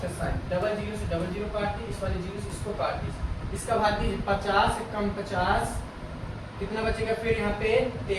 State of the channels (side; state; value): both; identical; correlation 1.00